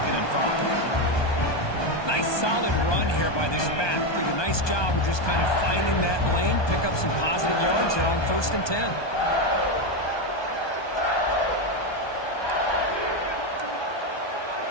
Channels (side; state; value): right; late; 1.2 ms